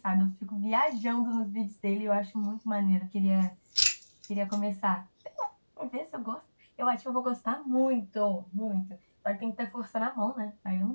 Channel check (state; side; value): inverted; both; correlation -1.00